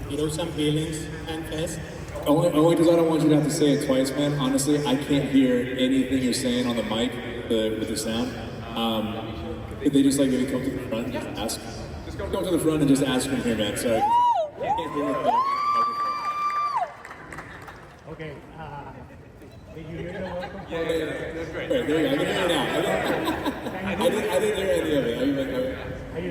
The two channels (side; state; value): both; identical; correlation 1.00